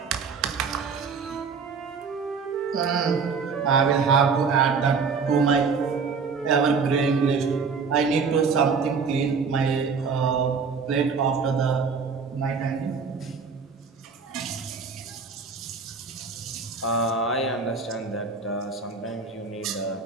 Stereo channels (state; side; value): quieter; left; 5.2 dB